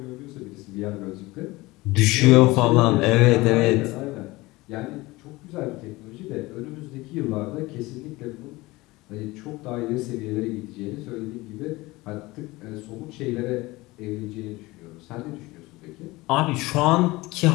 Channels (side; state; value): right; quieter; 20.9 dB